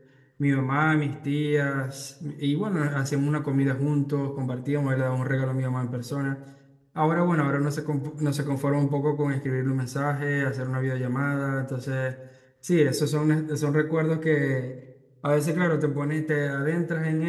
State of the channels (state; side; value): identical; both; correlation 1.00